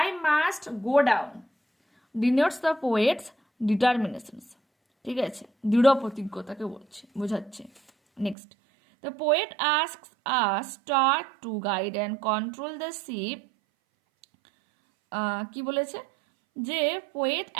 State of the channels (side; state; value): left; drops out; at 8.3 s